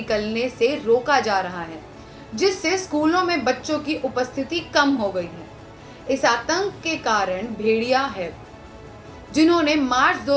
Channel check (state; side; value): identical; both; correlation 1.00